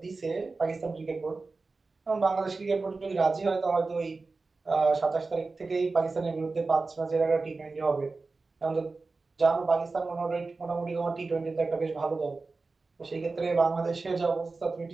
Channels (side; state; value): left; quieter; 3.8 dB